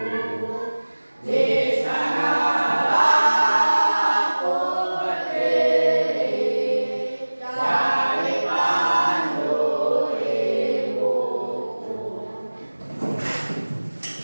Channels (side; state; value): both; inverted; correlation -1.00